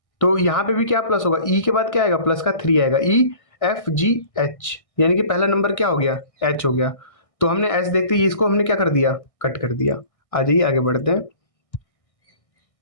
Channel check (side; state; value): right; late; 1.6 ms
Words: तो यहाँ पे भी क्या प्लस होगा? ई के बाद क्या आएगा? प्लस का 3 आएगा। ई एफ जी एच, यानी कि पहला नंबर क्या हो गया? एच हो गया। तो हमने एच देखते ही इसको हमने क्या कर दिया? कट कर दिया। आ जाइए आगे बढ़ते हैं।